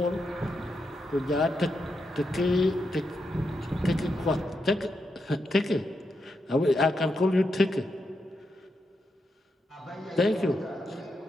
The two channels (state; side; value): normal; both; correlation 0.84